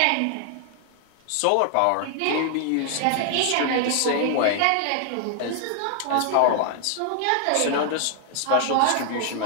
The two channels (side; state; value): both; different; correlation 0.00